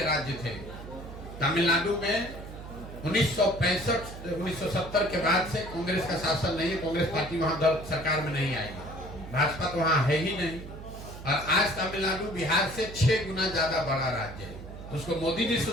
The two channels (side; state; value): right; noise; hum, 12 dB below the sound